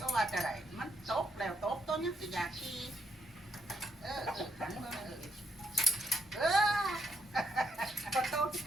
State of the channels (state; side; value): normal; both; correlation 0.76